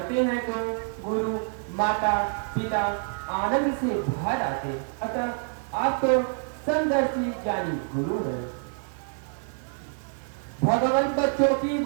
हैं तो गुरु माता पिता आनंद से भर आते। अतः आप तो समदर्शी ज्ञानी गुरु हैं। भगवान बच्चों की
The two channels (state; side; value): silent; left; 60 dB below the other